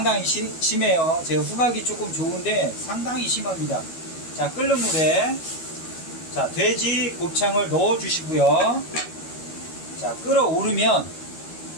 심해요. 제 후각이 조금 좋은데 상당히 심합니다. 자, 끓는 물에 자, 돼지 곱창을 넣어 주시고요. 자, 끓어오르면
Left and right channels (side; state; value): right; late; 12 ms